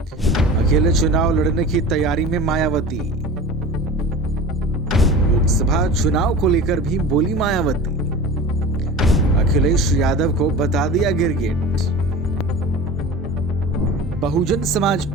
अकेले चुनाव लड़ने की तैयारी में मायावती। लोकसभा चुनाव को लेकर भी बोली मायावती। अखिलेश यादव को बता दिया गिरगिट। बहुजन समाज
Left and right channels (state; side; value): normal; both; correlation 0.35